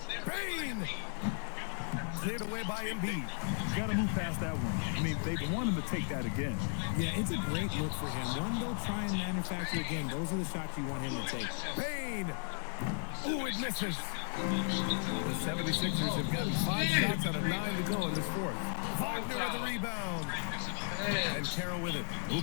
Bain! Cleared away by Embiid. Got to move past that one. I mean, they want him to take that again. Yeah, it's a great look for him. One, they'll try and manufacture again. Those are the shots you want him to take. Bain! Ooh, it misses. The 76ers have gotten 5 shots out of 9 to go in this fourth. Wagner with the rebound. And Carroll with it.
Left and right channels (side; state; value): right; silent; digital silence